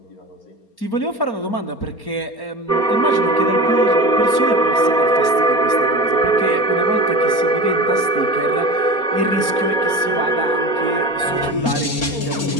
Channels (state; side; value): late; right; 4.3 ms